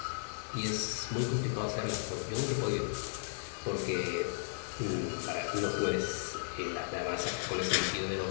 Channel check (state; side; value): silent; right; digital silence